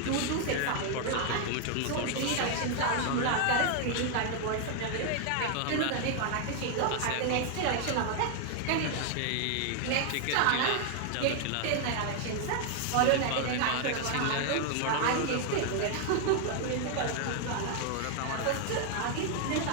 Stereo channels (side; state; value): both; different; correlation 0.00